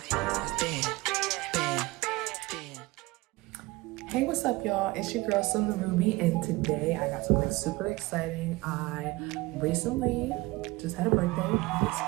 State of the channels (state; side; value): quieter; left; 21.3 dB